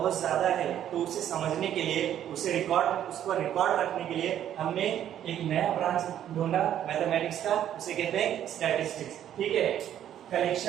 ज्यादा है, तो उसे समझने के लिए, उसको रिकॉर्ड रखने के लिए हमने एक नया ब्रांच ढूंढा मैथमेटिक्स का, उसे कहते हैं स्टैटिस्टिक्स। ठीक है,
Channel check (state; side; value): quieter; left; 10.7 dB